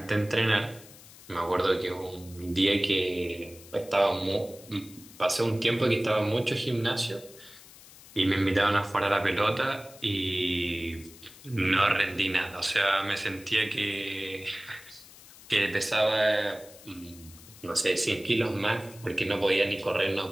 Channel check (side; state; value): left; noise; hiss, 20 dB below the sound